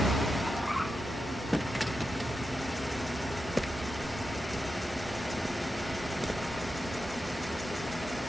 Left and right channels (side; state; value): both; normal; correlation 0.89